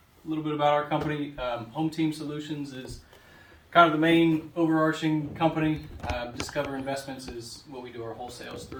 little bit about our company. Hometeam Solutions is kind of the main overarching company. Discover Investments is what we do our wholesales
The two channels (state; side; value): identical; both; correlation 1.00